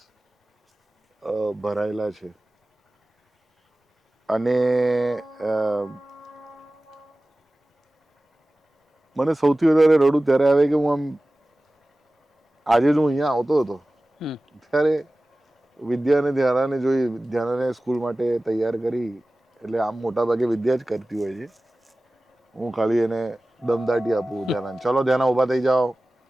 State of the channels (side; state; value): both; normal; correlation 0.97